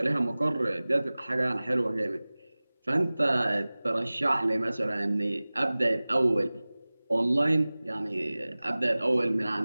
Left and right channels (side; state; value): both; inverted; correlation -0.99